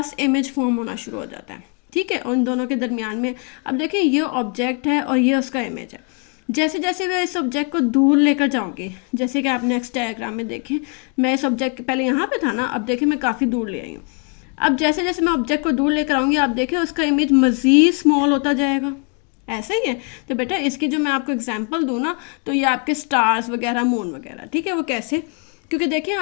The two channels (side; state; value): right; quieter; 35.6 dB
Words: इमेज फॉर्म होना शुरू हो जाता है। ठीक है, उन दोनों के दरमियान में। अब देखिए ये ऑब्जेक्ट है और ये उसका इमेज है। जैसे जैसे मैं इस ऑब्जेक्ट को दूर लेकर जाऊंगी, जैसे कि आप नेक्स्ट डायग्राम में देखें, मैं इस ऑब्जेक्ट पहले यहाँ पे था ना, अब देखिए मैं काफ़ी दूर ले आई हूँ। अब जैसे जैसे मैं ऑब्जेक्ट को दूर लेकर आऊँगी, आप देखिए उसका इमेज मज़ीद स्मॉल होता जाएगा। ऐसा ही है। तो बेटा इसकी जो मैं आपको एग्जांपल दूँ ना, तो ये आपके स्टार्स वगैरह, मून वगैरह। ठीक है, वो कैसे, क्योंकि देखिए